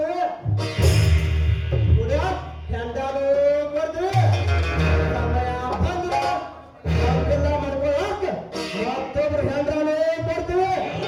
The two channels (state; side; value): identical; both; correlation 1.00